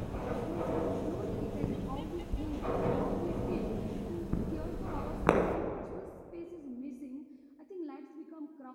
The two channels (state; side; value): identical; both; correlation 1.00